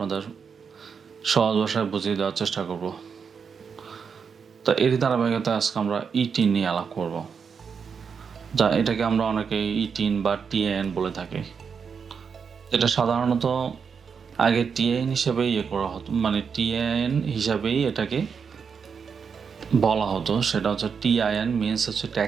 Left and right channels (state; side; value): quieter; left; 6.2 dB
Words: সহজ ভাষায় বুঝিয়ে দেওয়ার চেষ্টা করব। তা এরই ধারাবাহিকতায় আজকে আমরা ইটিন নিয়ে আলাপ করব, যা এটাকে আমরা অনেকে ইটিন বা টিএন বলে থাকি। এটা সাধারণত আগে টিএন হিসেবেই করা হতো, মানে টিএন হিসাবেই এটাকে বলা হতো। সেটা হচ্ছে টিআইএন মিনস হচ্ছে